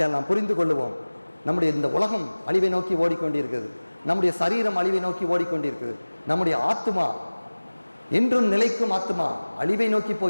நாம் புரிந்து கொள்ளுவோம், நம்முடைய இந்த உலகம் அழிவை நோக்கி ஓடிக்கொண்டிருக்கிறது. நம்முடைய சரீரம் அழிவை நோக்கி ஓடிக்கொண்டிருக்கிறது. நம்முடைய ஆத்துமா, என்றும் நிலைக்கும் ஆத்துமா அழிவை நோக்கி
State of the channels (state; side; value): inverted; both; correlation -1.00